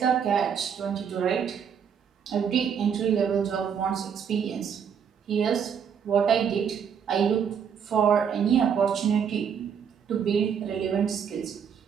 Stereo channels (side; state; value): left; quieter; 7.5 dB